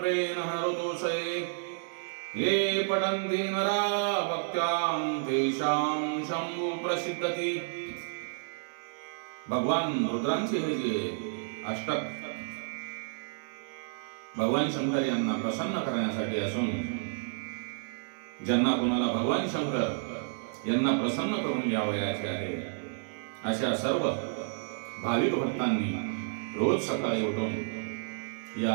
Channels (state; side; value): silent; left; digital silence